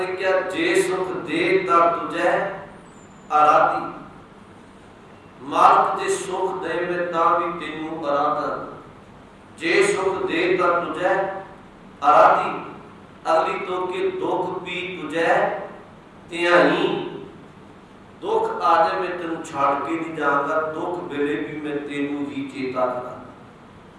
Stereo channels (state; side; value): identical; both; correlation 1.00